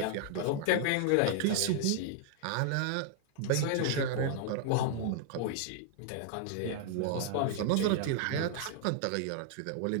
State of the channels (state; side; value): different; both; correlation -0.01